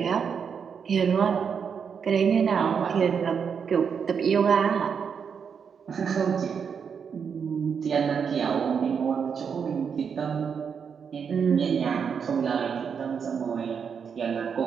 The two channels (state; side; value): quieter; left; 6.7 dB